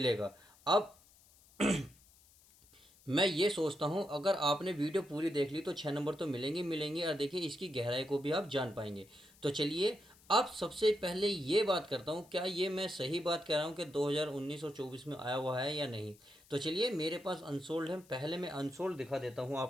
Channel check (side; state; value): left; noise; hiss, 27 dB below the sound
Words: अब मैं ये सोचता हूँ, अगर आपने वीडियो पूरी देख ली तो 6 नंबर तो मिलेंगे मिलेंगे, और देखिए इसकी गहराई को भी आप जान पाएंगे। तो चलिए, अब सबसे पहले ये बात करता हूँ, क्या ये मैं सही बात कह रहा हूँ कि 2019 और 24 में आया हुआ है या नहीं। तो चलिए, मेरे पास अनसोल्ड है, पहले मैं अनसोल्ड दिखा देता हूँ